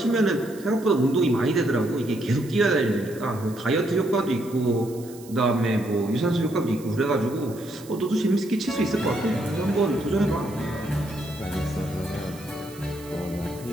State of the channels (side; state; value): right; noise; hiss, 20 dB below the sound